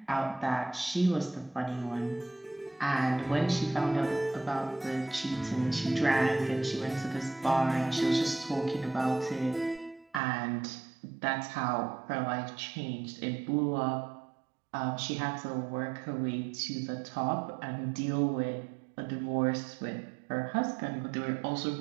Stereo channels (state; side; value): drops out; left; at 10.2 s